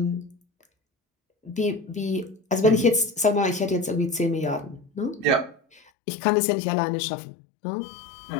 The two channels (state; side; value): drops out; right; at 5.8 s